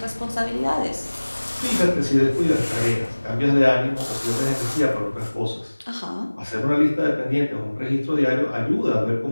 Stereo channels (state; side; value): inverted; both; correlation -1.00